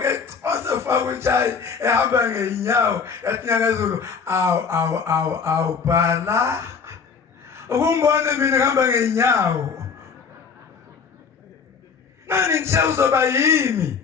osefaka utshayi ehamba ngeenyawo yathi nyangezulu awu bhala ukungibona mina ngihamba ngeenyawo nani nje uzoba yimi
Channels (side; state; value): right; quieter; 5.9 dB